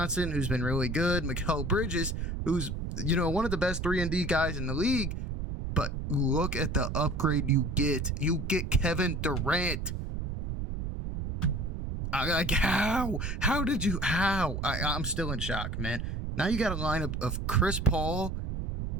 who's been really good. Mikal Bridges, who's, one of the best 3-and-D guys in the league. But look at the upgrade you get. You get Kevin Durant. How did you, I'm still in shock, man. Now you got a lineup of Chris Paul,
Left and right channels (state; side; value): noise; right; rumble, 3 dB below the sound